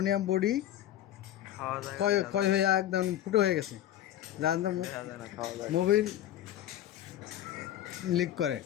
বডি ক্ষয় ক্ষয় হয়ে একদম ফুটো হয়ে গেছে, যার মোবিল লিক করে।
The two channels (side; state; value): right; quieter; 12.3 dB